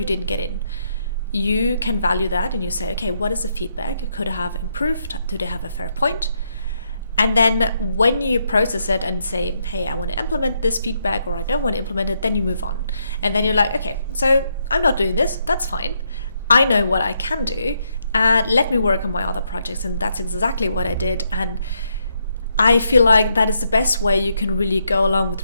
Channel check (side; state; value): both; inverted; correlation -0.77